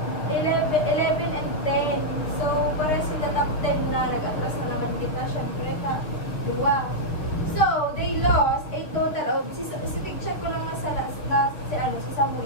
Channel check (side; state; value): right; late; 6.7 ms